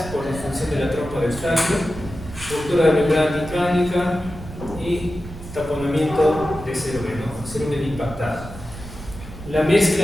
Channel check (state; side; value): noise; right; rumble, 13 dB below the sound